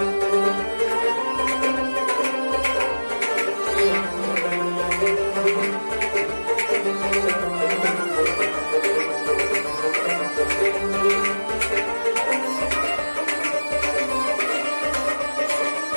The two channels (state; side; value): inverted; both; correlation -1.00